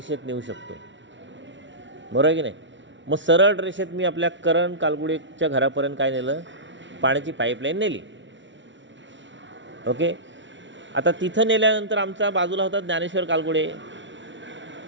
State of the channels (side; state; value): left; late; 0.55 ms